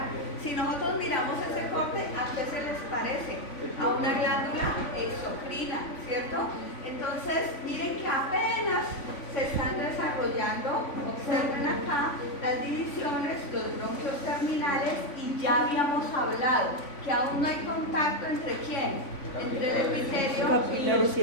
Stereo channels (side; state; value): right; late; 3.5 ms